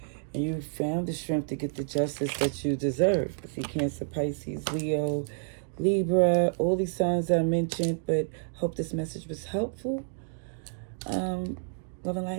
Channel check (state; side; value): silent; left; digital silence